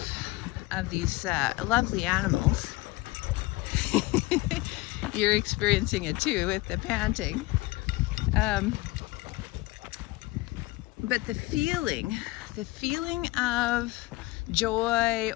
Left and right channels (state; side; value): quieter; right; 20.9 dB